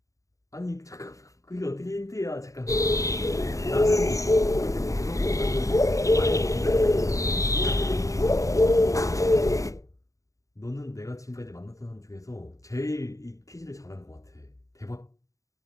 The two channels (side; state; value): right; late; 0.16 ms